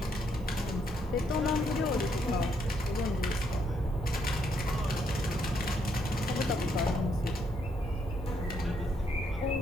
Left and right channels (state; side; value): normal; both; correlation 0.74